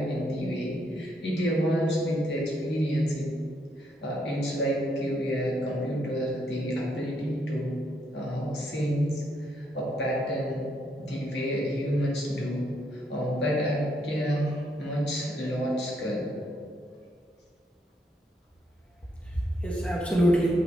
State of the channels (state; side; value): normal; both; correlation 0.75